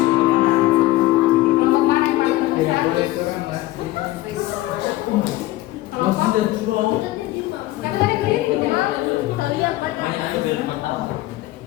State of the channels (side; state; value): right; quieter; 17.1 dB